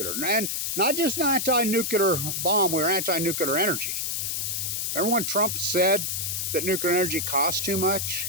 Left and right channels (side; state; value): left; noise; hiss, 1 dB below the sound